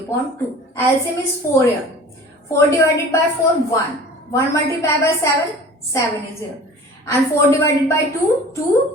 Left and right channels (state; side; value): normal; both; correlation 0.43